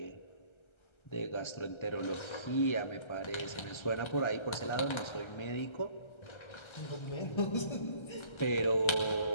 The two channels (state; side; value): late; right; 1.3 ms